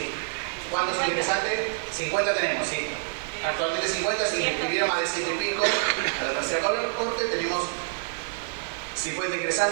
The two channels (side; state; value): left; silent; digital silence